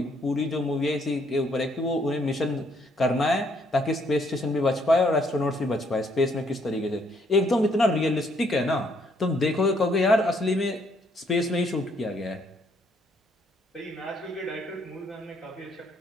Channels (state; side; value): normal; both; correlation 0.69